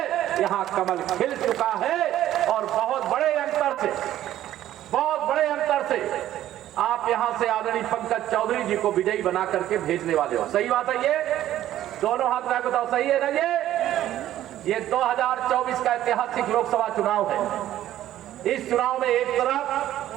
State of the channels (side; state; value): left; quieter; 12.9 dB